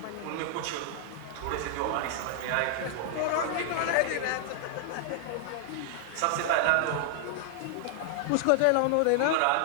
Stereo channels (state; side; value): different; both; correlation 0.00